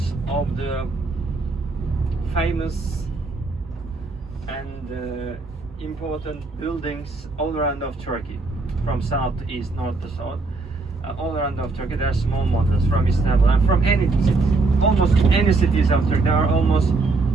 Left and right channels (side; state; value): left; quieter; 3.6 dB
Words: of the famous and important buildings all around of Turkey, from south to east, north to south, all around of Turkey. There are small models from Istanbul and from any city, almost any cities of Turkey. There are almost